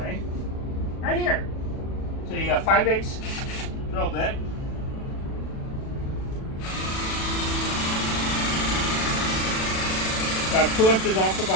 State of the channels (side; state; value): right; late; 37 ms